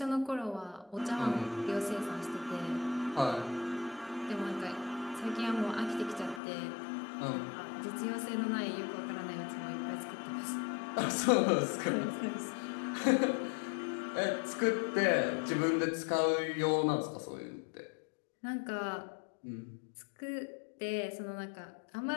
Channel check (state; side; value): drops out; right; at 6.4 s